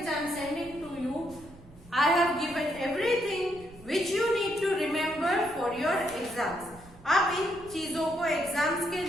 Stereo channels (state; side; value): noise; right; rumble, 21 dB below the sound